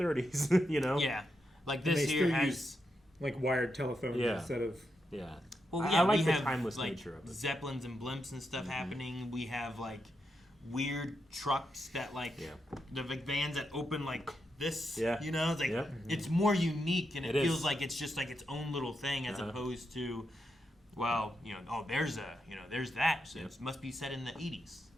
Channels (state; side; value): normal; both; correlation 0.84